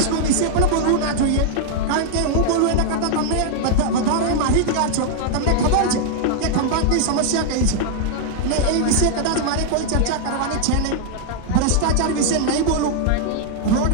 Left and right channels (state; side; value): different; both; correlation -0.01